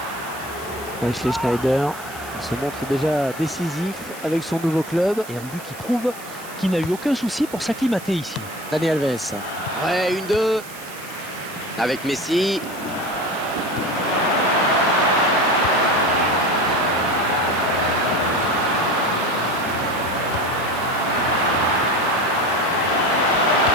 Wesley Schneider se montre déjà décisif avec son nouveau club. Et un but qui prouve qu'il n'a eu aucun souci pour s'acclimater ici. Dani Alves. Ouais, 1-2. Avec Messi.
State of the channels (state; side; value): noise; right; hiss, 16 dB below the sound